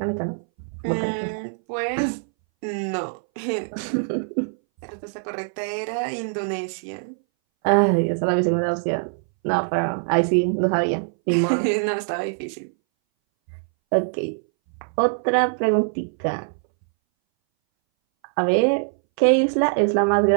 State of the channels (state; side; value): silent; left; 61 dB below the other